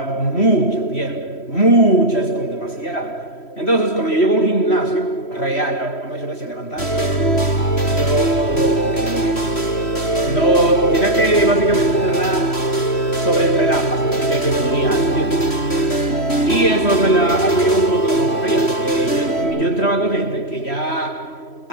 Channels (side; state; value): right; late; 3.1 ms